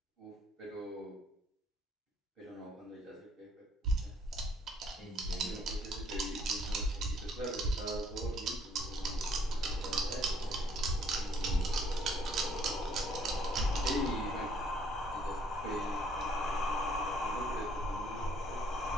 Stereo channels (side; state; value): both; normal; correlation 0.64